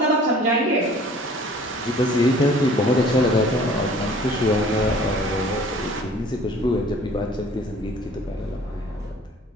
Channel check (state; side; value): normal; both; correlation 0.51